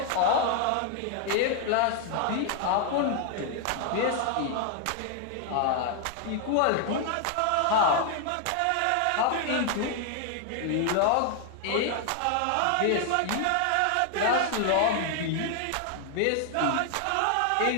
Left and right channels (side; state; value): both; different; correlation 0.00